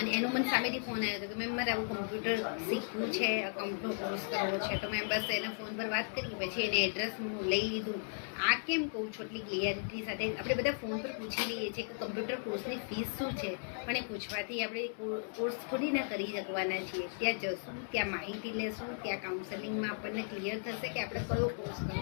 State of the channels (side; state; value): right; silent; 54 dB below the other